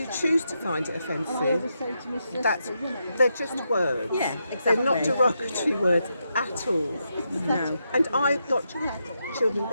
choose to find it offensive, they're just words. Yeah, exactly. They're not derogatory words at all. No. And I've got children,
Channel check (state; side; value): inverted; both; correlation -0.83